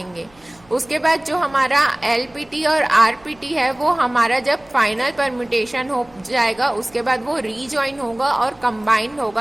उसके बाद जो हमारा LPT और RPT है वो हमारा जब फाइनल परम्यूटेशन हो जाएगा उसके बाद वो रीजॉइन होगा और कंबाइंड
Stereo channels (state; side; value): noise; right; hum, 29 dB below the sound